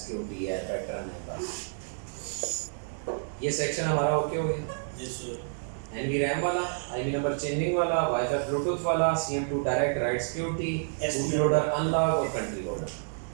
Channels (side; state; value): left; silent; digital silence